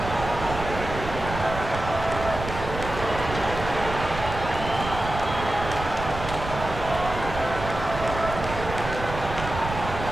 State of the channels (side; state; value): right; noise; rumble, 8 dB below the sound